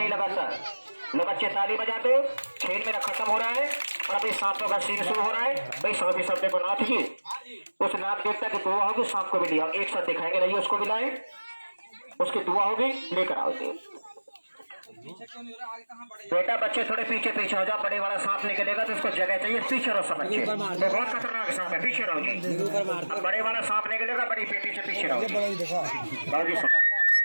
लगाता? लोग अच्छे ताली बजा दो, खेल मेरा खत्म हो रहा है और अभी सांपों का सीन शुरू हो रहा है। भाई सभी शब्द को नाथ जी, उस नाथ देवता की दुआ होगी, सांप को भी लिया, एक साथ दिखाएंगे, रहिए उसको भी लाए, उसकी दुआ होगी, लेकर आओ। बेटा बच्चे थोड़े पीछे पीछे हो जाओ, बड़े वाला सांप निकलेगा तो उसको जगह चाहिए, पीछे रहो सब बच्चे, वो बहुत खतरनाक सांप है, पीछे रहो जी। अब बड़े वाला सांप निकलेगा, बड़ी पेटी से पीछे रहो।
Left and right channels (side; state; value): both; inverted; correlation -1.00